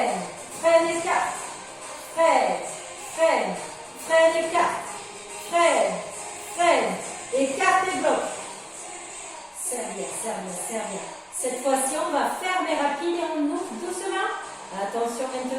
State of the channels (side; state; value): both; identical; correlation 1.00